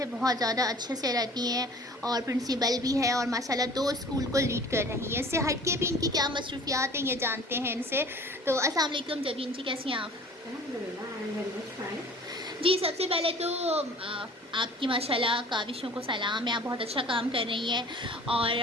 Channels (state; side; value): normal; both; correlation 0.46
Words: بہت زیادہ اچھے سے رہتی ہیں اور پرنسپل بھی ہے اور ماشاءاللہ 2 اسکول کو لیڈ کر رہی ہیں. اس سے ہٹ کے بھی ان کی کیا مصروفیات ہیں یہ جانتے ہیں ان سے. تو السلام علیکم جبین جی، کیسی ہیں آپ؟ الحمدللہ I am very much fine. جی، سب سے پہلے تو آپ کی ماشاءاللہ کاوشوں کو سلام ہے. آپ بہت اچھا کام کر رہی ہیں. اور